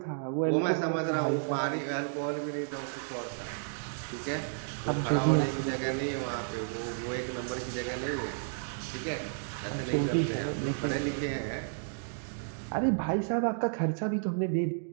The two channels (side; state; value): left; silent; digital silence